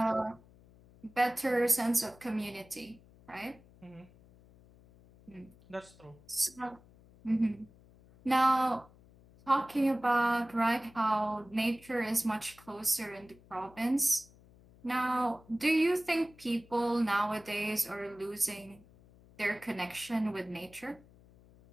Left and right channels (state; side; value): noise; left; hum, 25 dB below the sound